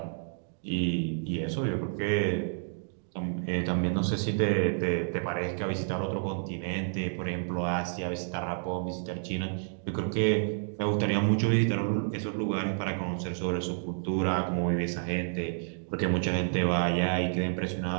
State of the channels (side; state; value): left; silent; digital silence